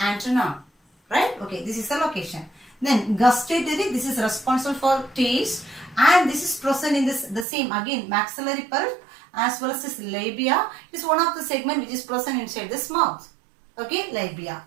right? Okay, this is the location. Then gustatory, this is responsible for taste, and this is present in this the same again maxillary pulp as well as this labia. It is one of the segment which is present inside this mouth. Okay, labia.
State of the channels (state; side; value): drops out; left; at 7.5 s